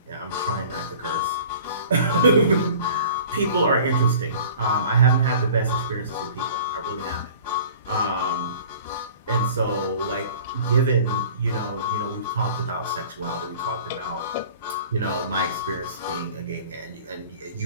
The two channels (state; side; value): inverted; both; correlation -0.45